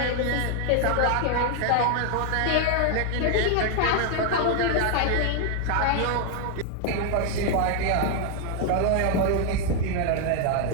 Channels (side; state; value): both; different; correlation 0.00